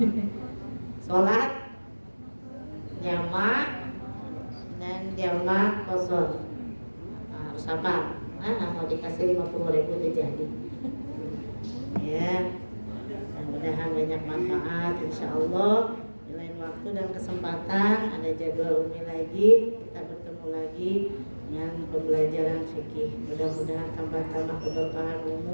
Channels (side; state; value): both; inverted; correlation -1.00